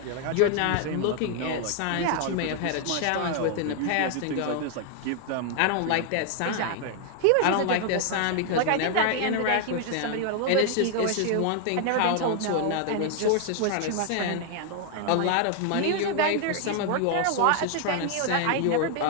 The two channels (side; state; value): both; different; correlation 0.00